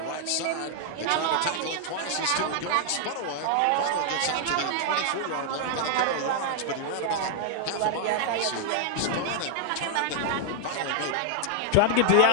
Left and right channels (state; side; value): different; both; correlation 0.00